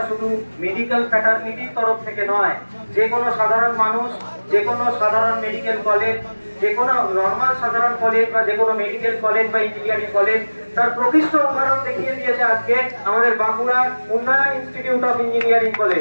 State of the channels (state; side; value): inverted; both; correlation -1.00